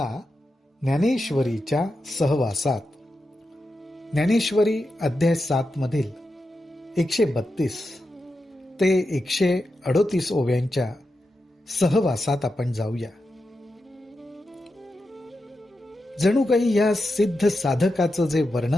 ज्ञानेश्वरीच्या सहवासात. ज्ञानेश्वरी अध्याय 7 मधील 132 ते 138 ओव्यांच्या सहवासात आपण जाऊया. जणू काही या सिद्ध साधकाचं जे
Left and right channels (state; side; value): normal; both; correlation 0.89